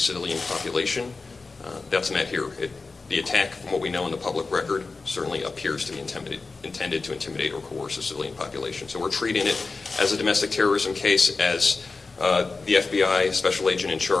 population. That's met here. The attack, from what we know in the public record, certainly appears to be intended to intimidate or coerce a civilian population. So we're treating it as a domestic terrorism case, as the FBI special agent in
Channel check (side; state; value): right; quieter; 4.0 dB